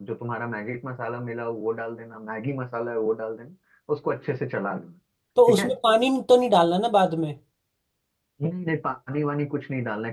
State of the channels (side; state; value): both; identical; correlation 1.00